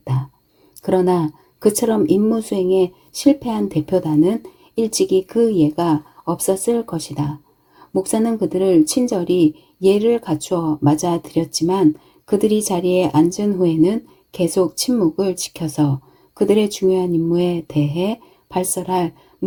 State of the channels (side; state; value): both; identical; correlation 1.00